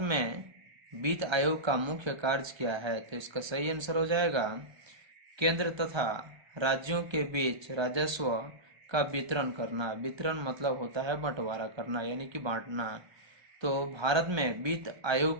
में वित्त आयोग का मुख्य कार्य क्या है? तो इसका सही आंसर हो जाएगा केंद्र तथा राज्यों के बीच राजस्व का वितरण करना। वितरण मतलब होता है बंटवारा करना यानी कि बांटना। तो भारत में वित्त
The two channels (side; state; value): left; late; 1.3 ms